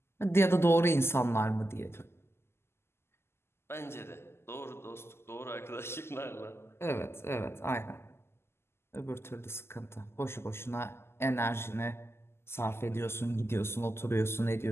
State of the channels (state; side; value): late; right; 0.12 ms